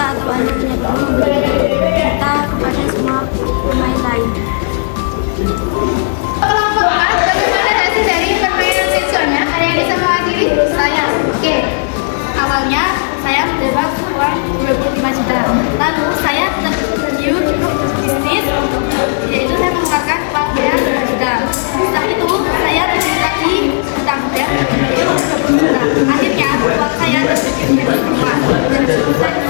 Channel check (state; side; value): silent; right; digital silence